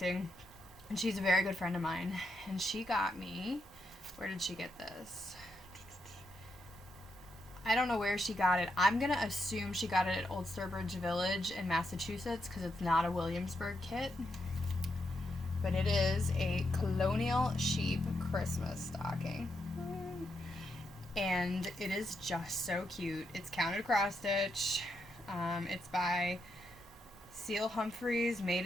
and she's a very good friend of mine, and she got me... Where did she get this? I don't know where she got it. I'm going to assume she got it at Old Sturbridge Village in Massachusetts, because it's not a Williamsburg kit. but it is a colonial sheep Christmas stocking. And it is just so cute. It's counted cross stitch. It's by Seal Humphreys,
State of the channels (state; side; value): normal; both; correlation 0.82